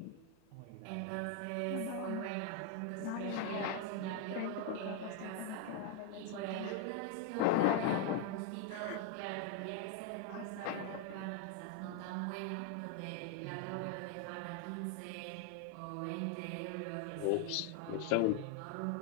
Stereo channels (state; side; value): different; both; correlation 0.00